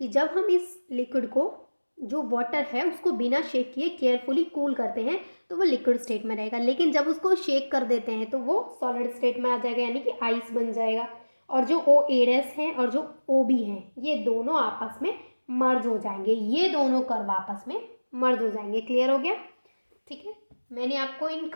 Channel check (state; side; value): inverted; both; correlation -1.00